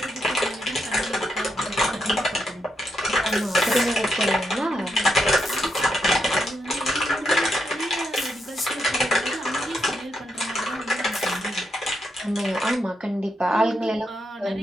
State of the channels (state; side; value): normal; both; correlation 0.82